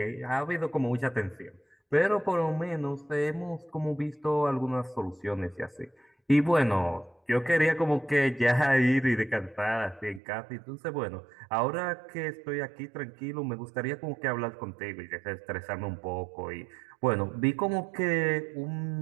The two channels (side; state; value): left; drops out; at 10.2 s